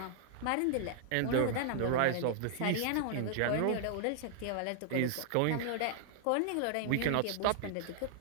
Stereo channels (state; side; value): different; both; correlation -0.01